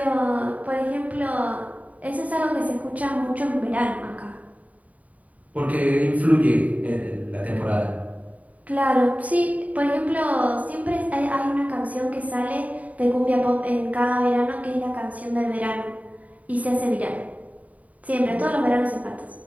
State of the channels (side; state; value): left; late; 0.071 ms